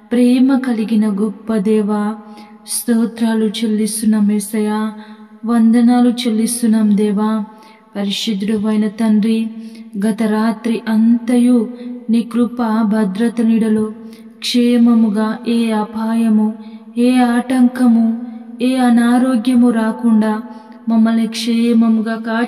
ప్రేమ కలిగిన గొప్ప దేవ, స్తోత్రాలు చెల్లిస్తున్నాం యేసయ్యా, వందనాలు చెల్లిస్తున్నాం దేవా. పరిశుద్ధుడు అయిన తండ్రి, గత రాత్రి అంతయు నీ కృప భద్రత నీడలో క్షేమముగా ఏ అపాయము, ఏ ఆటంకము, ఏ అనారోగ్యము రాకుండా మమ్మల్ని క్షేమముగా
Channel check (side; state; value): both; identical; correlation 1.00